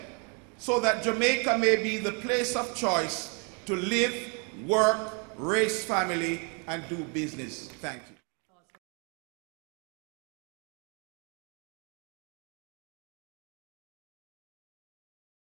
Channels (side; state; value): left; quieter; 36.2 dB